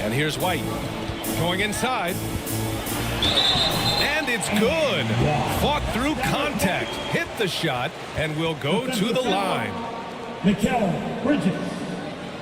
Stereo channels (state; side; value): identical; both; correlation 1.00